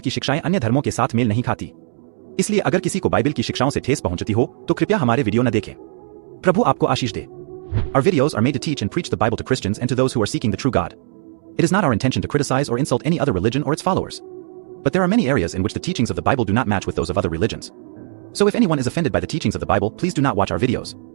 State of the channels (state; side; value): silent; left; digital silence